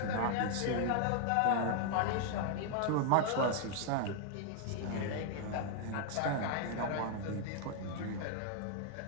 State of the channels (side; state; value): both; different; correlation 0.00